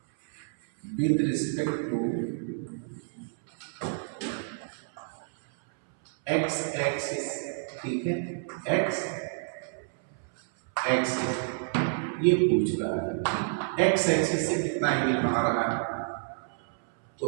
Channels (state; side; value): silent; left; 58 dB below the other